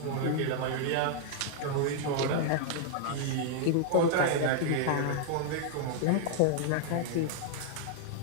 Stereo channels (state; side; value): different; both; correlation -0.01